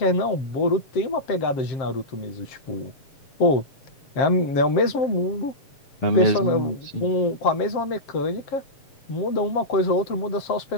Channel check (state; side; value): late; right; 7.5 ms